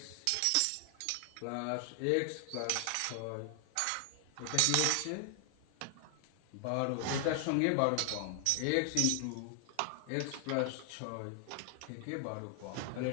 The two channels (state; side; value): different; both; correlation 0.00